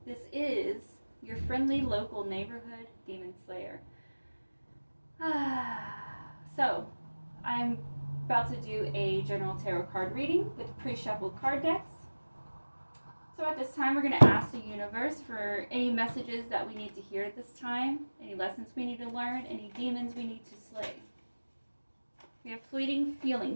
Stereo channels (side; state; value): both; inverted; correlation -1.00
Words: This is your friendly local neighborhood demon slayer. So, I'm about to do a general tarot card reading with pre-shuffled card decks. So at this time, we're going to ask the universe for any messages that we need to hear at this time, any lessons we need to learn, any demons we need to slay. We have fleeting